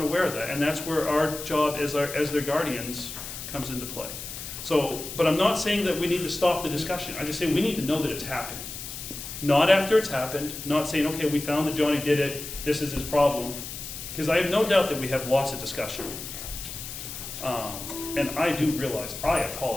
of that, and that's where our job as their guardians comes into play. So, but I'm not saying that we need to stop the discussion. I just say we need to know that it's happening. Not after it's happened, not saying, okay, we found that Johnny did it, this is his problem. Because I have no doubt that we have lots of discussion. And I do realize, I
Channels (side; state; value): left; noise; hiss, 9 dB below the sound